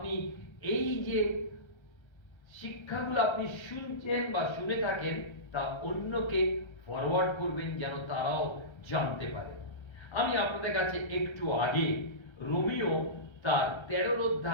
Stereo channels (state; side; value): late; right; 1.3 ms